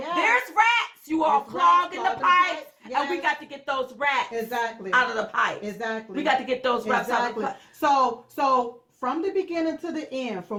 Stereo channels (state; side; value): identical; both; correlation 1.00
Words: rats, you all clogging the pipes, and we got to get those rats out of the pipes. We got to get those rats out of the pipes. So from the beginning to the end,